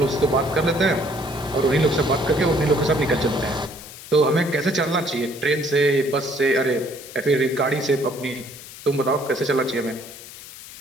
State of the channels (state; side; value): noise; left; hiss, 15 dB below the sound